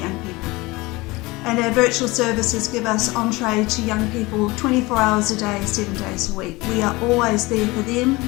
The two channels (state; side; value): quieter; right; 22.4 dB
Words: people, and our virtual services give us entree to young people 24 hours a day, 7 days a week. We are always there for them